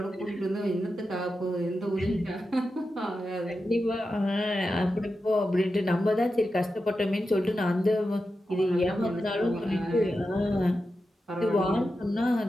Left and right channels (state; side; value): normal; both; correlation 0.90